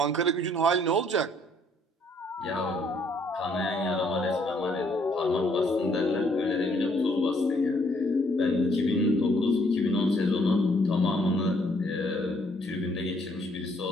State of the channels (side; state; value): both; normal; correlation 0.66